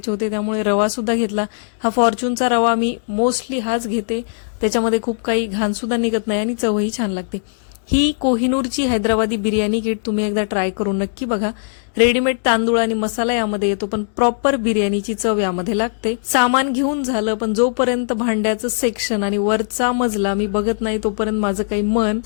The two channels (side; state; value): right; silent; digital silence